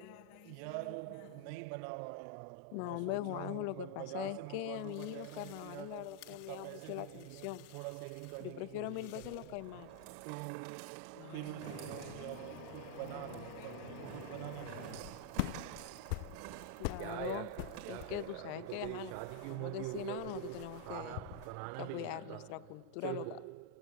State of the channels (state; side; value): different; both; correlation -0.01